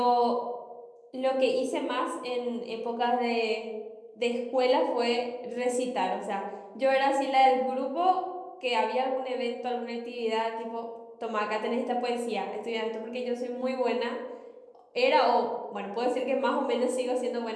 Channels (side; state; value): both; identical; correlation 1.00